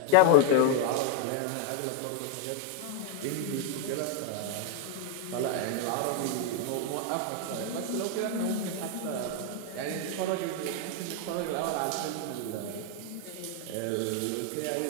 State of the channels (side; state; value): both; different; correlation 0.00